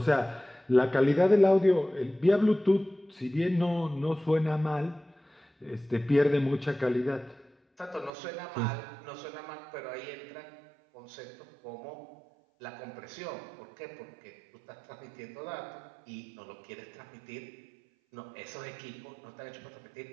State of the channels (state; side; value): drops out; left; at 8.1 s